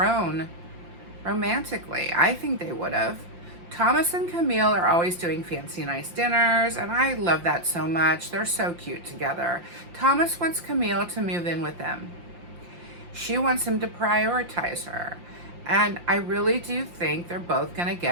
romantically. I think they would have. Thomas and Camille are always doing fancy nice dinners, and I love that so much. They're so cute together. Thomas wants Camille to move in with him. She wants him to prioritize her. And I really do think they're both going to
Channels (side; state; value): left; late; 5.7 ms